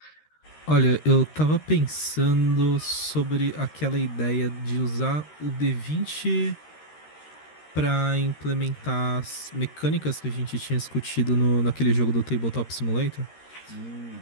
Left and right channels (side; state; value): right; late; 13 ms